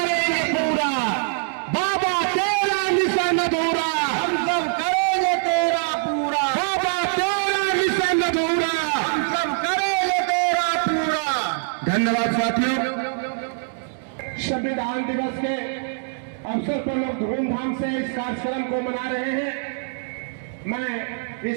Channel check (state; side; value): silent; left; digital silence